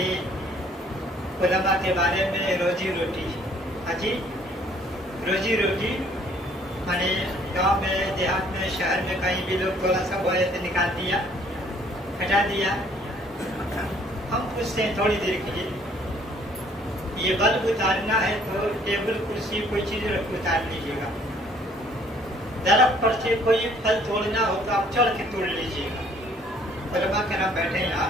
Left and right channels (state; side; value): normal; both; correlation 0.60